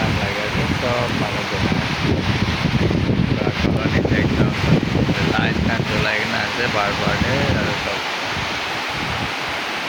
লাগে আছে সব পানি জমে एकदम लाइट ना जलाई ना আছে बार-बार আর সব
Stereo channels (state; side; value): identical; both; correlation 1.00